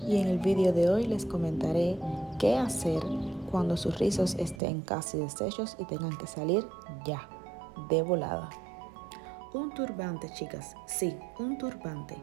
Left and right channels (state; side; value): drops out; left; at 4.6 s